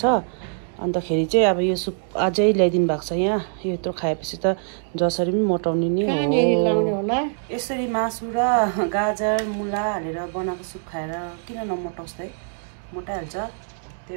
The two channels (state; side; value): silent; left; digital silence